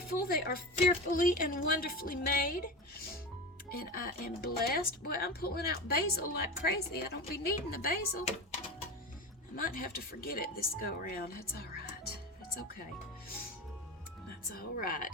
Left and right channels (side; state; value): both; normal; correlation 0.25